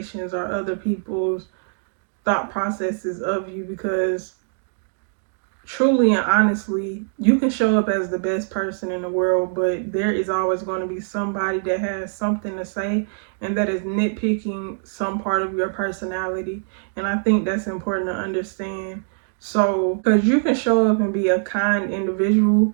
or other people's thought processes of you. Because truly and honestly, you can show up as the best person in the world, but there is always going to be somebody that has something to say and that is nitpicking some part of your personality. And I think that's important to understand. So, because you can show up and be a kind individual,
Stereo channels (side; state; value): left; silent; 64 dB below the other